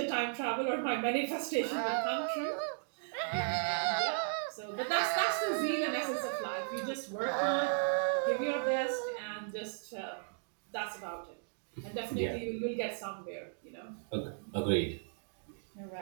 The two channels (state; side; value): silent; left; digital silence